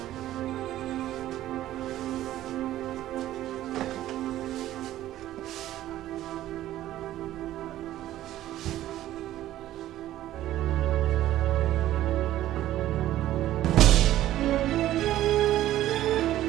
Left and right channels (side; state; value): left; quieter; 13.8 dB